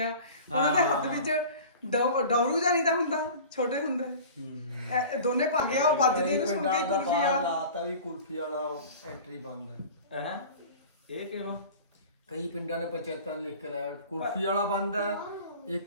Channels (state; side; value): inverted; both; correlation -0.39